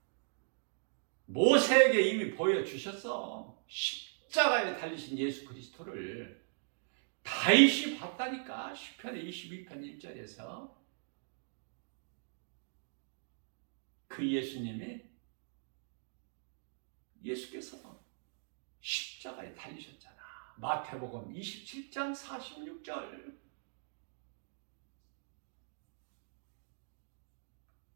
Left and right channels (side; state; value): left; silent; digital silence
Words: 모세에게 이미 보여주셨어. 십자가에 달리신 예수 그리스도를 다윗이 봤다니까. 시편의 22편 1절에서 그 예수께서 십자가에 달리셨잖아. 마태복음 27장 46절.